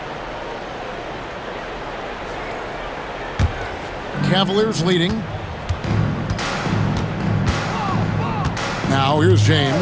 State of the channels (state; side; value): identical; both; correlation 1.00